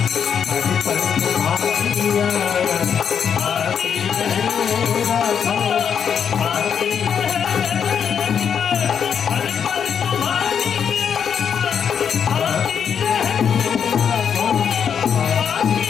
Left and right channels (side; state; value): right; quieter; 7.6 dB